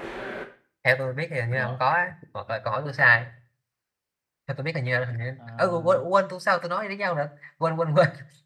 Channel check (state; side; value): identical; both; correlation 1.00